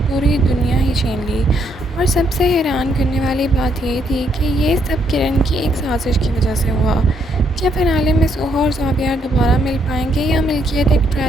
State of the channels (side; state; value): both; normal; correlation 0.73